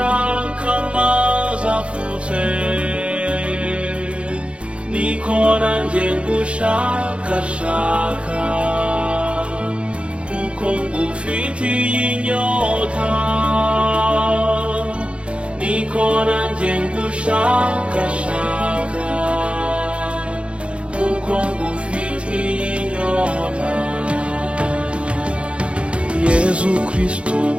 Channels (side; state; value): left; late; 0.059 ms